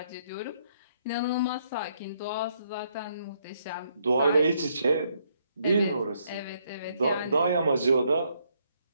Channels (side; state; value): both; inverted; correlation -0.72